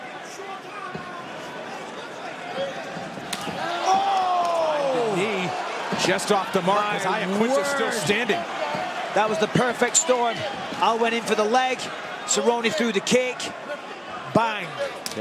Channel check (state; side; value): identical; both; correlation 1.00